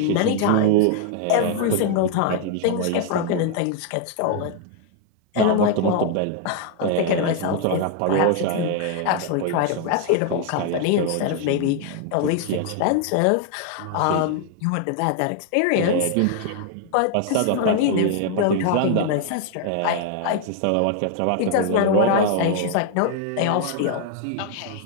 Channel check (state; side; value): different; both; correlation 0.00